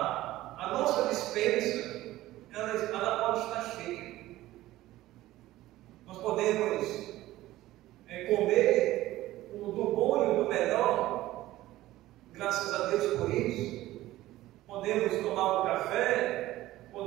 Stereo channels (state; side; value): quieter; left; 16.0 dB